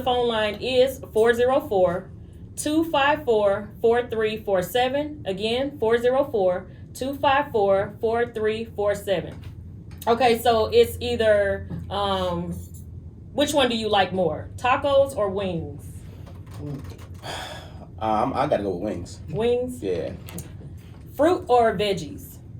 phone line is 404-254-4347. Again, 404-254-4347. Okay, so it's either, which one do you like more? Tacos or wings? I gotta go with wings. Wings? Yeah. Fruit or veggies?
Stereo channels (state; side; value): identical; both; correlation 1.00